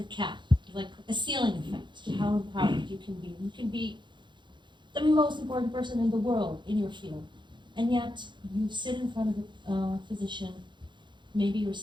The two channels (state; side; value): late; left; 0.23 ms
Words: cap, like a ceiling effect to how empowered you can be. You can be the most important person in the world in your field, and yet you sit in front of a physician, maybe you're